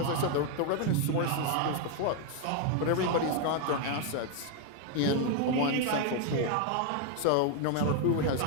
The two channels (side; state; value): both; different; correlation 0.01